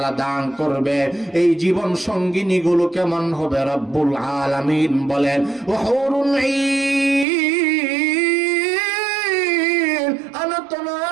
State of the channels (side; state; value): left; drops out; at 7.2 s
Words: দান করবে। এই জীবন সঙ্গিনী গুলো কেমন হবে? রব্বুল আলামিন বলেন, ওয়াহুরুন ঈন আনত